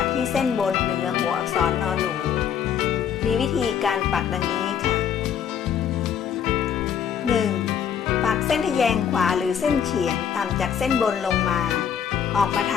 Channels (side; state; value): right; quieter; 8.3 dB